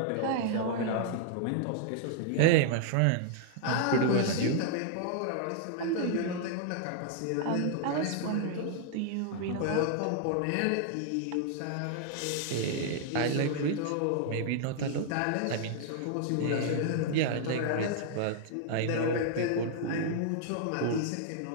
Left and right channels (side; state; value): both; different; correlation -0.01